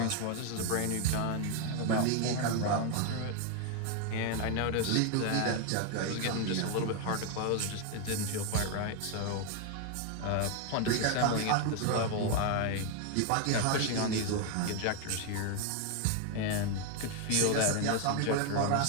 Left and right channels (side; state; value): both; different; correlation 0.01